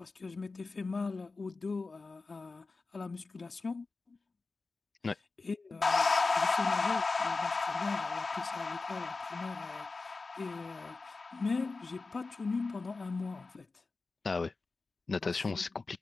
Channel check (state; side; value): quieter; right; 3.9 dB